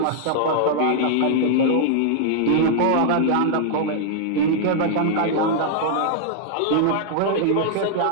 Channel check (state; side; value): different; both; correlation -0.01